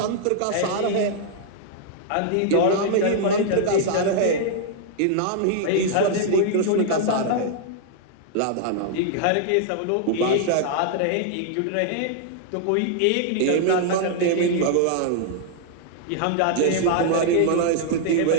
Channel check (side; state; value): both; different; correlation -0.01